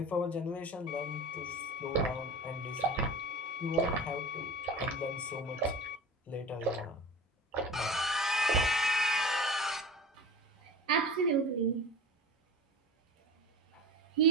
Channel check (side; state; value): both; normal; correlation 0.34